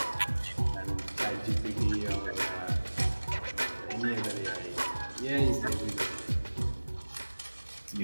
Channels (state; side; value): inverted; both; correlation -1.00